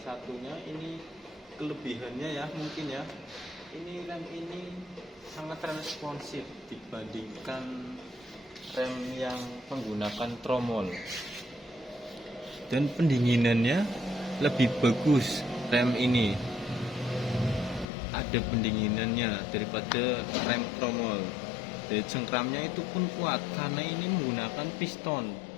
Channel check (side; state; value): right; drops out; at 17.9 s